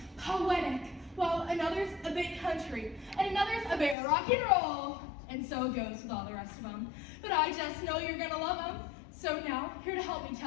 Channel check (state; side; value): drops out; right; at 4.0 s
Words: poetic, while another's a bit country, and another's a bit rock and roll. And so it goes with all the rest of them. But I just know you're gonna love them. So now, here to help me